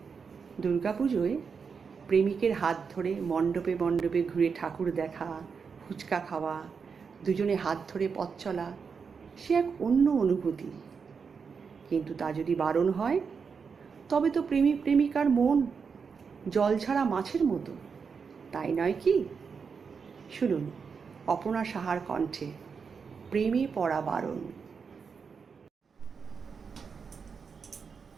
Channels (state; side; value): quieter; left; 5.8 dB